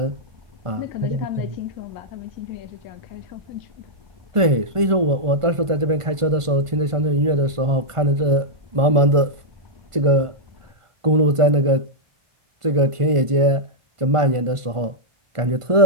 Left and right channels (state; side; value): late; left; 1.5 ms